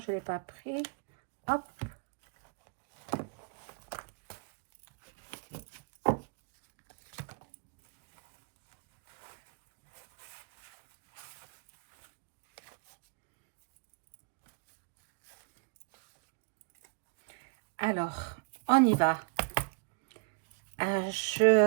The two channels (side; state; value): left; quieter; 32.7 dB